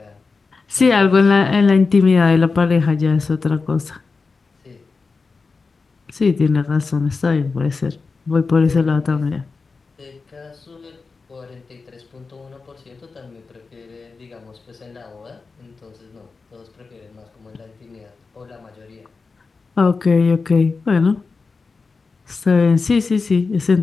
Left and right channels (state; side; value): quieter; right; 4.4 dB